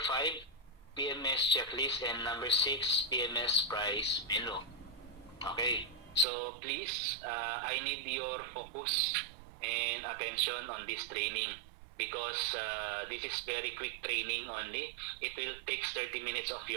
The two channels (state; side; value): drops out; left; at 6.2 s